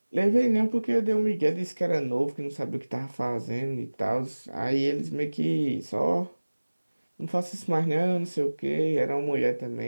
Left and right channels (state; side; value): inverted; both; correlation -1.00